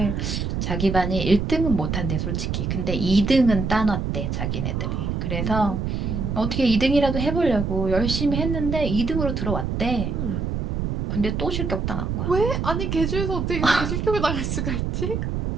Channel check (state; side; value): noise; right; rumble, 2 dB below the sound